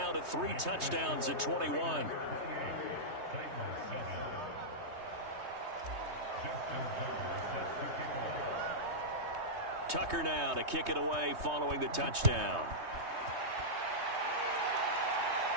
to 3 touchdowns at 21. Tucker now to kick it away following the touchdown.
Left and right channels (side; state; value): left; late; 3.2 ms